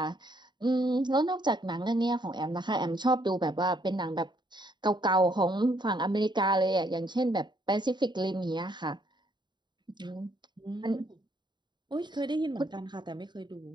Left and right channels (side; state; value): left; late; 0.22 ms